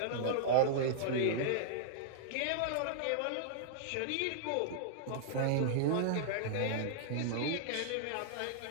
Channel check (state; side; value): different; both; correlation -0.02